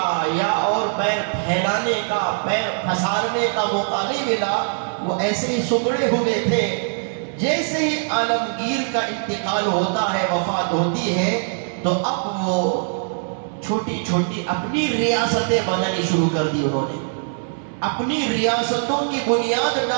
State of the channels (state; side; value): silent; left; digital silence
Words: یا اور پیر پھیلانے کا، پیر پھسارنے کا موقع نہیں ملا، وہ ایسے ہی سکڑے ہوئے تھے۔ جیسے ہی عالمگیر کا انتقال ہوتا ہے، وفات ہوتی ہے، تو اب وہ چھوٹی چھوٹی اپنی ریاستیں بنانی شروع کر دی، انہوں نے اپنی ریاستوں کی بنیاد